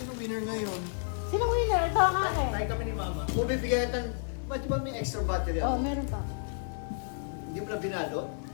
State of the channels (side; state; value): right; silent; 57 dB below the other